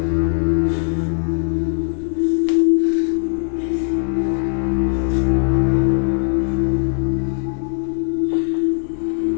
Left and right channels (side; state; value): right; silent; digital silence